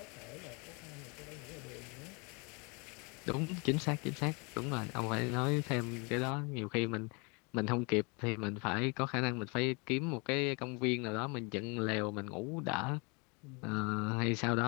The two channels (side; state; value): right; quieter; 31.4 dB